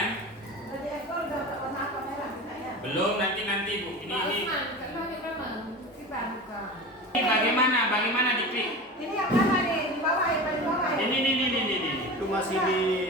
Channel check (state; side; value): normal; both; correlation 0.31